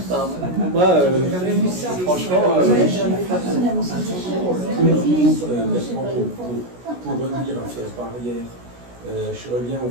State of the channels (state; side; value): late; left; 16 ms